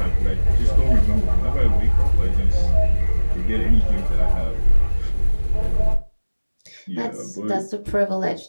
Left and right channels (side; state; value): both; inverted; correlation -1.00